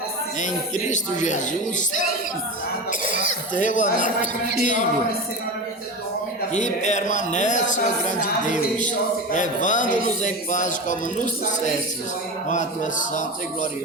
em Cristo Jesus, teu amado Filho, que permanece, ó grande Deus, levando-nos em paz como nos dissestes, com a tua santa e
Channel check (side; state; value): both; normal; correlation 0.25